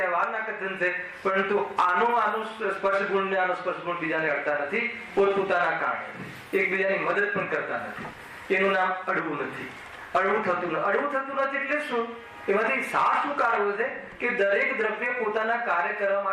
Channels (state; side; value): identical; both; correlation 1.00